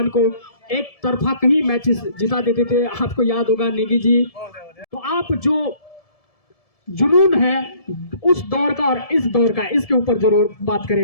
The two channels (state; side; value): late; right; 1.7 ms